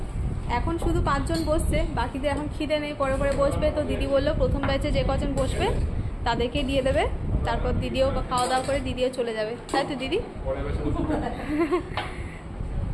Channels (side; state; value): both; identical; correlation 1.00